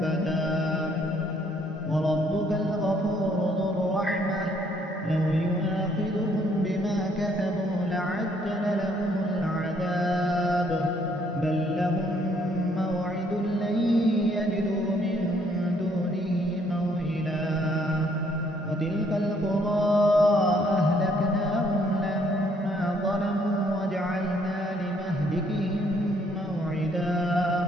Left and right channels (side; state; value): both; normal; correlation 0.66